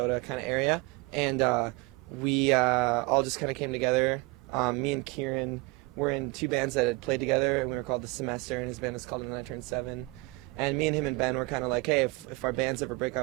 kind of area, and we all just kind of came together. Me and Kieran were in two bands that had played together, and we were called The Semester, and his band was called When I Turned 7. And me and him and Ben were kind of like, hey, if our bands ever break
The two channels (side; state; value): left; quieter; 24.1 dB